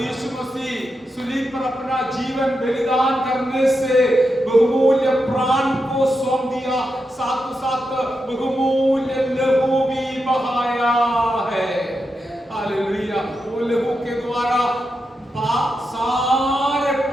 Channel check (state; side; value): normal; both; correlation 0.87